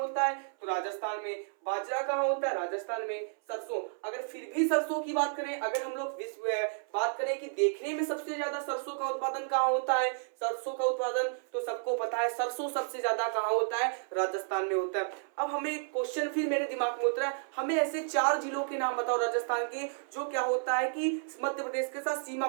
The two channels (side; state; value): left; silent; 57 dB below the other